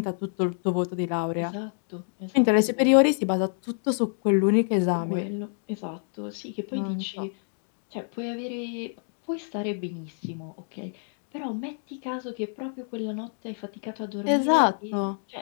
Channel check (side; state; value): right; silent; 58 dB below the other